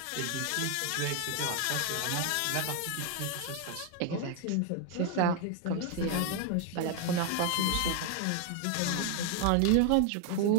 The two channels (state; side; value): different; both; correlation 0.00